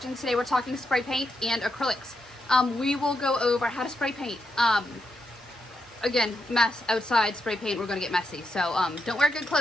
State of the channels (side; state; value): both; normal; correlation 0.83